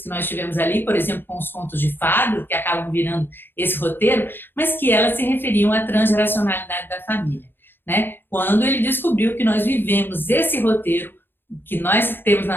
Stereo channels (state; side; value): late; right; 0.10 ms